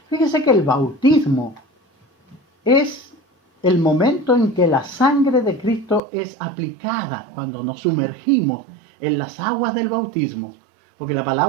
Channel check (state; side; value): drops out; left; at 6.0 s